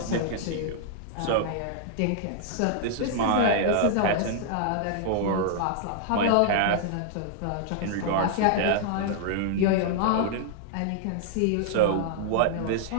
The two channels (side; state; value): both; different; correlation -0.01